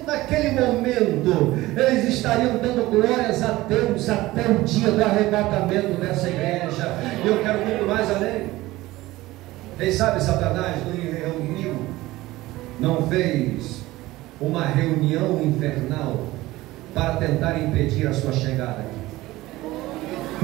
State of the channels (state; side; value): quieter; left; 18.1 dB